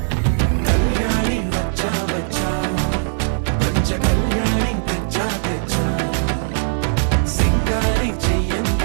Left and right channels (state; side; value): silent; left; 57 dB below the other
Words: కళ్యాణి వచ్చా వచ్చా పంచ కళ్యాణి తెచ్చా తెచ్చా సింగారి